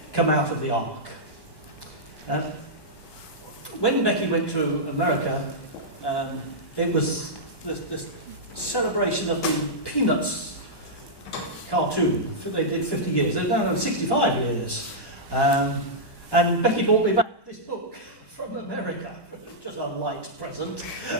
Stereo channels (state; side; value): late; right; 1.1 ms